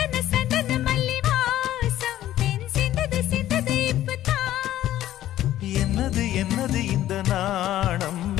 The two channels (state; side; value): quieter; right; 13.2 dB